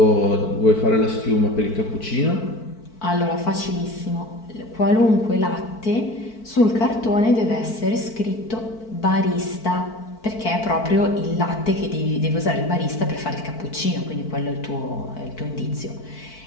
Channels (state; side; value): late; right; 4.5 ms